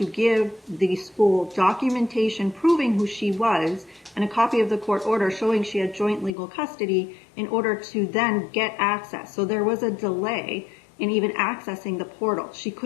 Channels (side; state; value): right; drops out; at 6.4 s